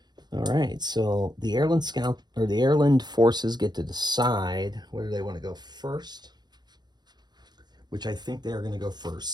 All right, so the Airland Scout or the Airland forces get to decide whether they want to go first, which I think they are going to go first.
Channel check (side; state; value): left; late; 0.20 ms